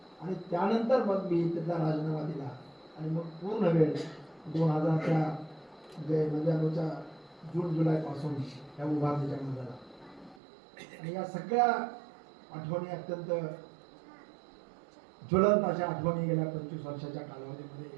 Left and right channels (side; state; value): left; drops out; at 10.4 s